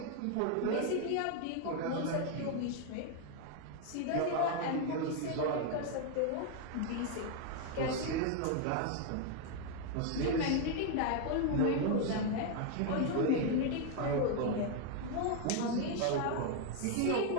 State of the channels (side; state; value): both; different; correlation 0.01